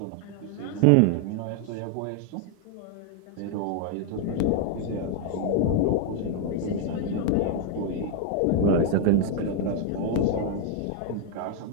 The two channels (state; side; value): different; both; correlation 0.01